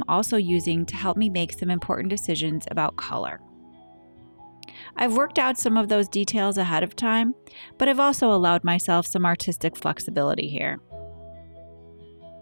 also using to help me make some important decisions about color. I've worked out some of those details ahead of time, but I've also allowed myself some artistic flexibility here.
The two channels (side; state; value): both; inverted; correlation -1.00